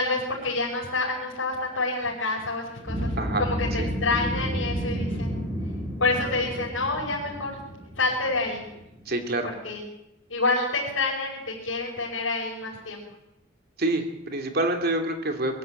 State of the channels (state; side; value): normal; both; correlation 0.02